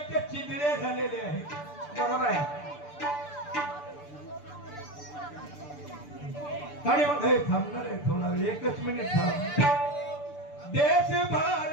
चिंधड्या झालेल्या आहेत. बरोबर आहे. आणि मग हे थांबणार आहे थोडा वेळ, एकच मिनिट थांब. देश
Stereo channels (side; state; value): right; late; 6.8 ms